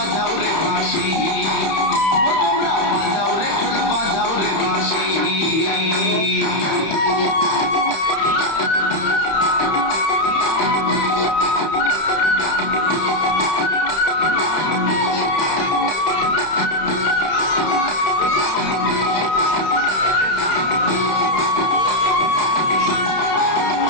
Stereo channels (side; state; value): right; late; 31 ms